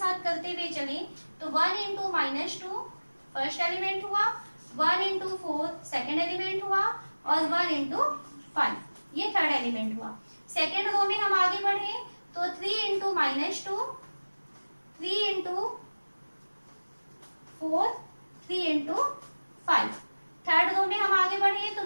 करते हुए चले, तो 1 इंटू -2 फर्स्ट एलिमेंट हुआ, 1 इंटू 4 सेकेंड एलिमेंट हुआ, और 1 इंटू 5 ये थर्ड एलिमेंट हुआ। सेकेंड रो में हम आगे बढ़े तो 3 into -2, 3 into 4, 3 into 5। Third row में हम आगे बढ़े तो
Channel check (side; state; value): both; inverted; correlation -1.00